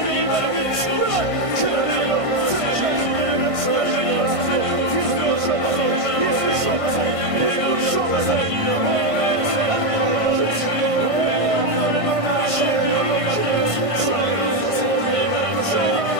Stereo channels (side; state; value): left; late; 1.5 ms